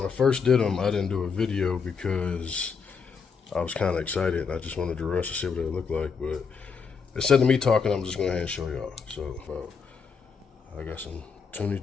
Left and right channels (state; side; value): quieter; right; 5.7 dB